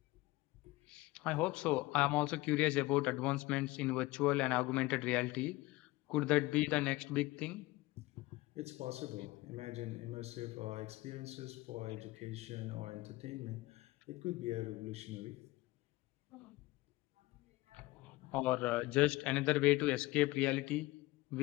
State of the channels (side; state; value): right; quieter; 20.1 dB